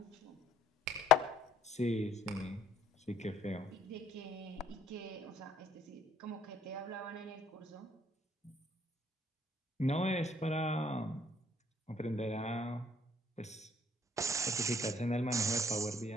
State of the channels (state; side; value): normal; both; correlation 0.61